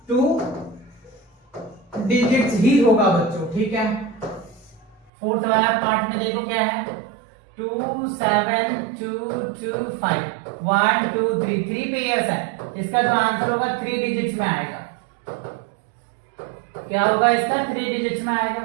2 डिजिट्स ही होगा बच्चों, ठीक है। फोर्थ वाला पार्ट में देखो क्या है 2 7 2 2 5 1 2 3 3 पेयर्स है, इसका जो आंसर होगा 3 डिजिट्स में आएगा। क्या होगा इसका 3 डिजिट्स में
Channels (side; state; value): left; drops out; at 5.1 s